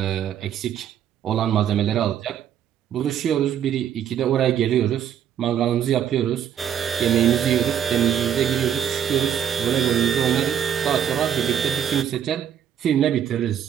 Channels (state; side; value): quieter; left; 9.4 dB